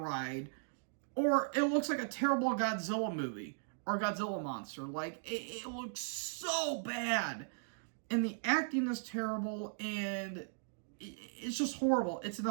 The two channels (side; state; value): left; silent; digital silence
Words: or it looks like a terrible Godzilla movie, or Godzilla monster. Like, it looks so bad. And the acting is terrible, and it's just horrible. It's an